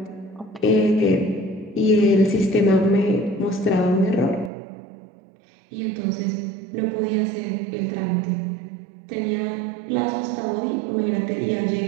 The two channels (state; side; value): drops out; left; at 4.5 s